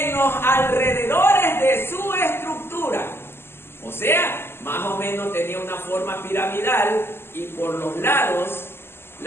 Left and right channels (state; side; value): late; right; 0.12 ms